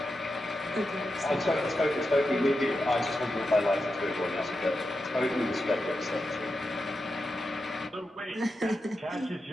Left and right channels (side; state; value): both; normal; correlation 0.89